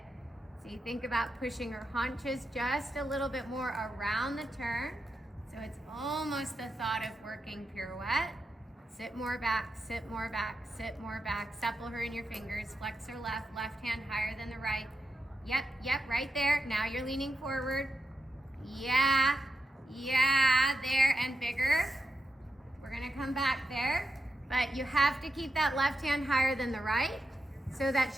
So you think about pushing her haunches just a little bit more around the turn. So it's almost the thought of working pirouette. Sit more back, sit more back, sit more back. Supple her in your fingers. Flex her left hand higher than the right. Yep, right there. Now you're leaning forward. Yeah, there, and bigger. We're gonna come back there, but you have to keep that left hand higher than the right so that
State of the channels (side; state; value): both; normal; correlation 0.87